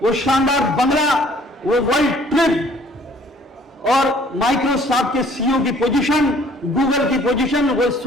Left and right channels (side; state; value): both; normal; correlation 0.57